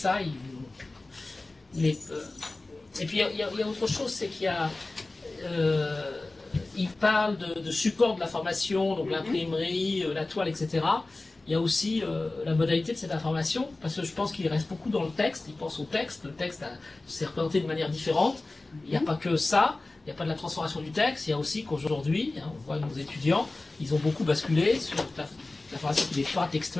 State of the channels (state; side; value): quieter; right; 3.1 dB